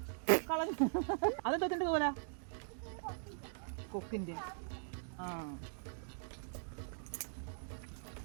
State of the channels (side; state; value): left; silent; digital silence